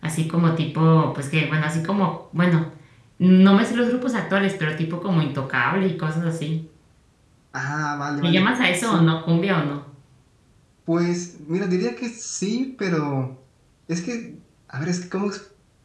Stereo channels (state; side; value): identical; both; correlation 1.00